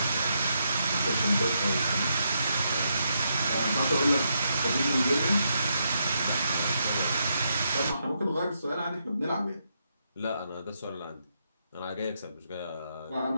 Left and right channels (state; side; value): inverted; both; correlation -0.80